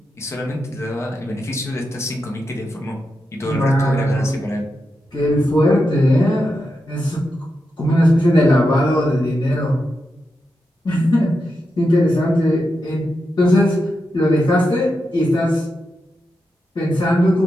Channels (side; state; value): both; normal; correlation 0.87